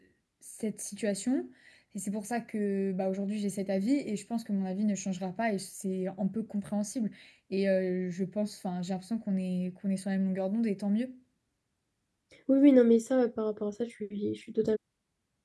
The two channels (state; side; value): identical; both; correlation 1.00